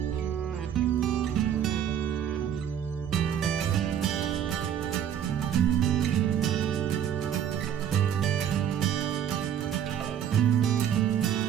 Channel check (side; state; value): left; quieter; 9.3 dB